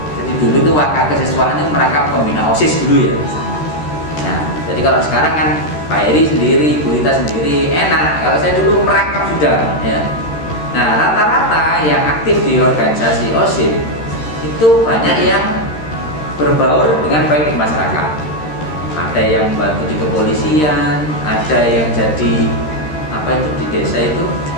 Jadi dulu itu wakil kesiswaan ini merangkap pembina OSIS dulu ya. Nah, jadi kalau sekarang kan Pak Heri sendiri, Bu Rita sendiri enak. Kalau saya dulu merangkap sudah ya. Nah, rata-rata yang aktif di organisasi OSIS itu banyak yang berbaur dengan baik di masyarakat. Ada yang bantu di kepolisian, ada yang jadi apa itu di desa itu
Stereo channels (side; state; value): right; late; 13 ms